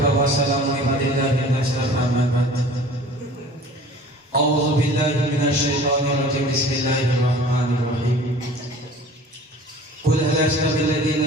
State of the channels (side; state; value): both; normal; correlation 0.45